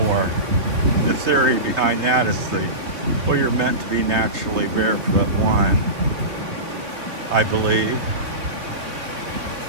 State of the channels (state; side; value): late; left; 2.8 ms